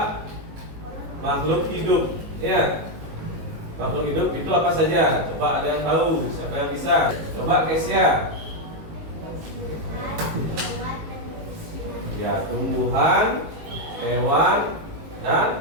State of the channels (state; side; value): late; left; 19 ms